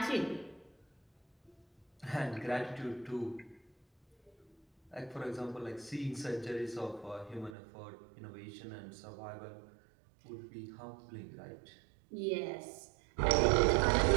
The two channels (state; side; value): drops out; left; at 7.6 s